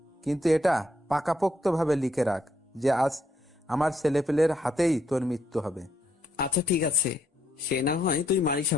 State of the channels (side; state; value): both; normal; correlation 0.73